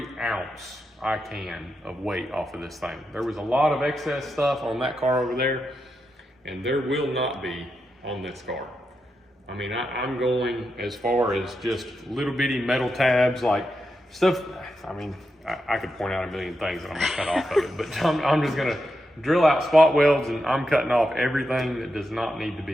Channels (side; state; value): both; normal; correlation 0.86